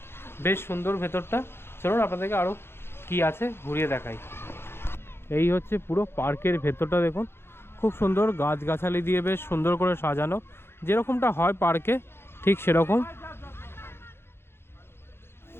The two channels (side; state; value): right; late; 0.11 ms